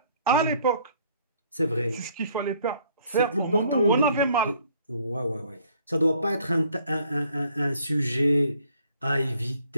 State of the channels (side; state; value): both; inverted; correlation -0.62